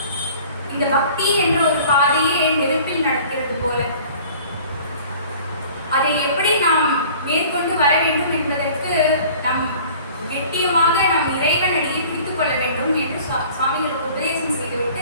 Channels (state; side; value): inverted; both; correlation -0.48